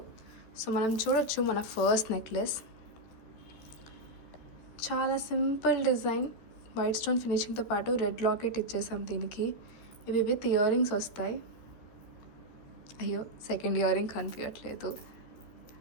సో మనం చూడొచ్చు మన ఫస్ట్ నెక్లెస్ చాలా సింపుల్ డిజైన్, వైట్ స్టోన్ ఫినిషింగ్తో పాటు రెడ్ లాకెట్ ఇచ్చేసాం దీనికి. ఇవి విత్ ఇయర్ రింగ్స్ వస్తాయి. అయ్యో సెకండ్ ఇయర్ రింగ్ కనిపించట్లేదు.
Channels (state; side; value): late; right; 13 ms